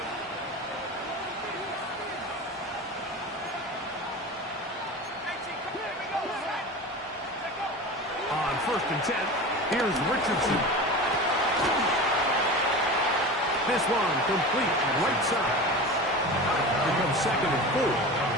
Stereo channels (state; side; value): normal; both; correlation 0.31